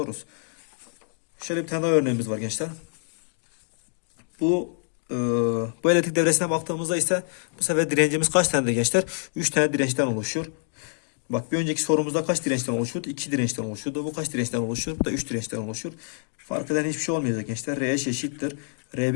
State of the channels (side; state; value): right; silent; 61 dB below the other